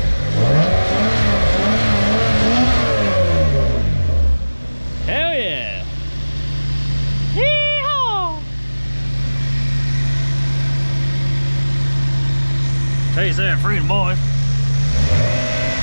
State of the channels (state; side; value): inverted; both; correlation -1.00